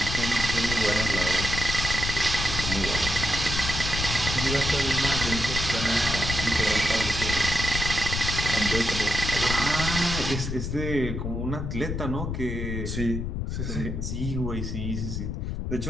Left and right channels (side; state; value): left; noise; rumble, 3 dB below the sound